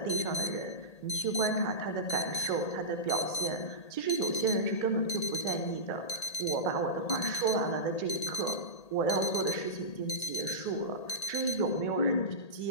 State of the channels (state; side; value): late; right; 1.8 ms